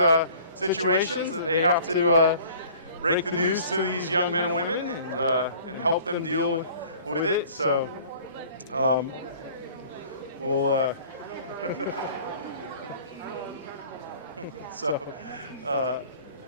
situations that they have to break the news to these young men and women and help them deal with it. So we'll so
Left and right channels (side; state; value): both; inverted; correlation -0.49